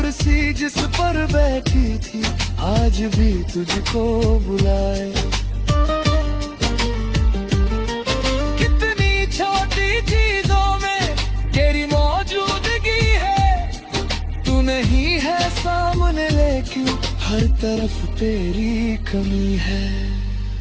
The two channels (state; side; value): identical; both; correlation 1.00